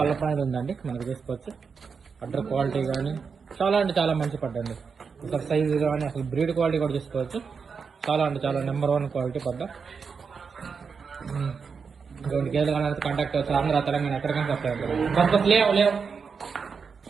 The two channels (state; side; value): quieter; left; 5.7 dB